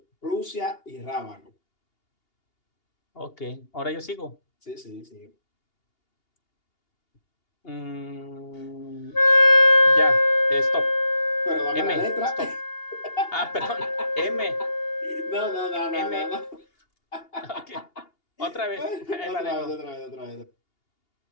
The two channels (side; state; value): right; late; 2.8 ms